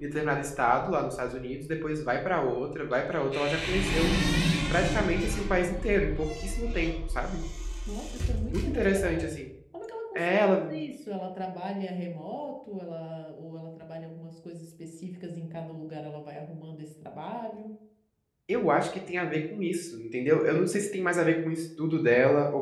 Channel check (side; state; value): both; identical; correlation 1.00